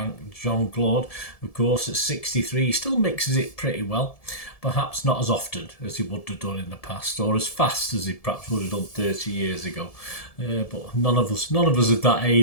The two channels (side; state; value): right; late; 1.7 ms